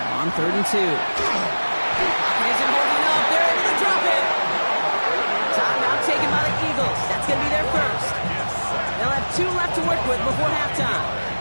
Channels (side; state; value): both; inverted; correlation -1.00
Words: on 3rd and 2. He isn't holding up. They're able to drop it. Timeout taken by the Eagles. That's going to be their first. They'll have 2 left to work with before halftime.